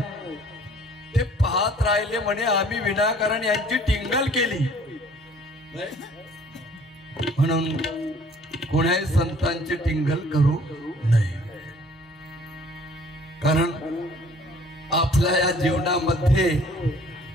ते पाहत राहिले म्हणे आम्ही विनाकारण यांची टिंगल केली. म्हणून कोणाही संतांची टिंगल करू नये. कारण आपल्या या जीवनामध्ये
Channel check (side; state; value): both; normal; correlation 0.55